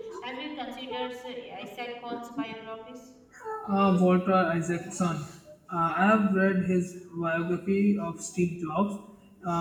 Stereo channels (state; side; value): identical; both; correlation 1.00